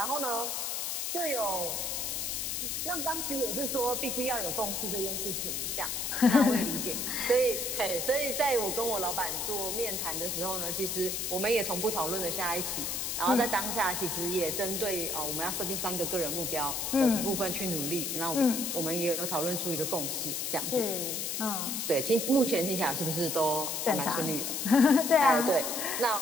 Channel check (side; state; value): left; noise; hiss, 2 dB below the sound